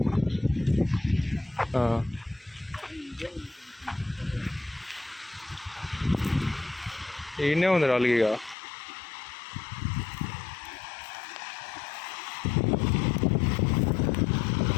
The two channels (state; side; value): drops out; right; at 8.6 s